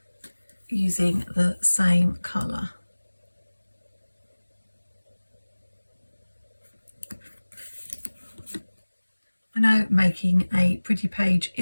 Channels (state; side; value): inverted; both; correlation -1.00